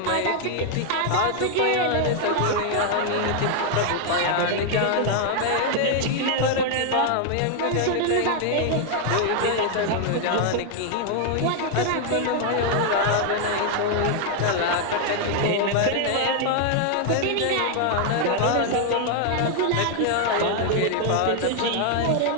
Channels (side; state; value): both; different; correlation 0.00